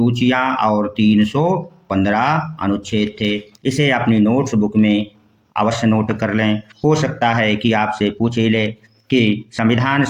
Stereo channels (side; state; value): both; identical; correlation 1.00